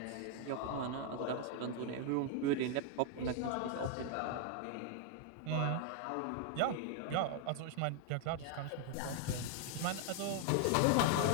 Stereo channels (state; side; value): different; both; correlation 0.00